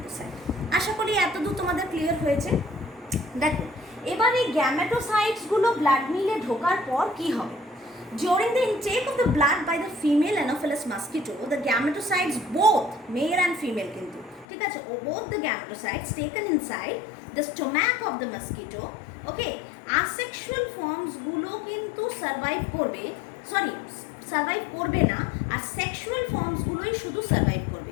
আশা করি এতদূর তোমাদের ক্লিয়ার হয়েছে। দেখো এবার এই গ্যামেটোসাইটসগুলো ব্লাড মিলে ঢোকার পর কি হবে? During the intake of the blood by the female Anopheles mosquito, the gametocytes, both male and female কিন্তু, ঠিক আছে, both the gametocytes taken inside the stomach of the mosquito, okay, asexual forms গুলো কিন্তু সার্ভাইভ করবে, survive করবে না, আর sexual ফর্মসগুলোই শুধু survive করবে।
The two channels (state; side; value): drops out; right; at 14.5 s